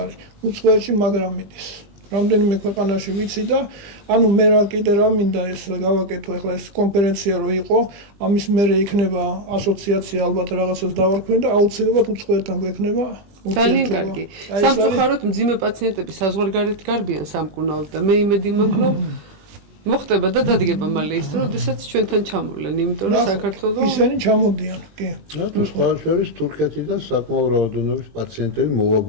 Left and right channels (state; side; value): late; left; 20 ms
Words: უცხოეთში მაგრამ მიდის რამდენიმე ქვეყანაში ვიცი და ანუ მე რა კიდე რა მინდა ეს გავაკეთო ახლა ეს კონფერენცია რო იყო ამის მერე იქნება ასოციაცია ალბათ რაღაცას დავარქვენ და აუცილებლად უცხოეთთან გვექნება ძალიან კარგი. სამწუხაროდ მძიმე პაციენტები საზღვარგარეთ გარბიან სამკურნალოდ და მე იმედი მაქვს რომ მოხდება და დადგება მალე ის რომ შესაძ ჩვენთან ჩამოვლენ იმიტომ რომ საქართველოს ისინი ჩამოდიან კი თუ სხვა შორის თურქეთიდან საკმაო რაოდენობის პაციენტები